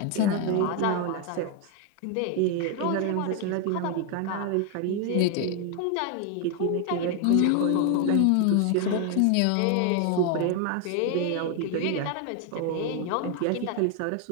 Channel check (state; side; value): different; both; correlation 0.01